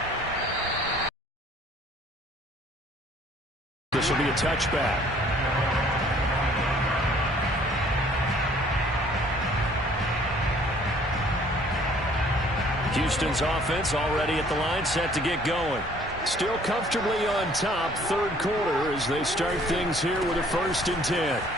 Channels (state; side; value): normal; both; correlation 0.57